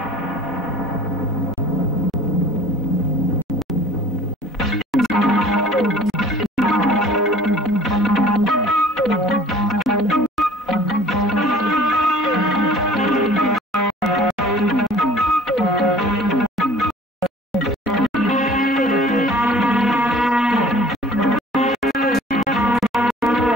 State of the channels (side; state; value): both; normal; correlation 0.49